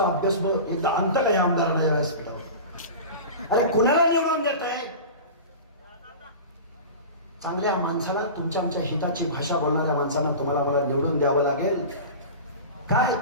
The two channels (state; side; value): inverted; both; correlation -0.32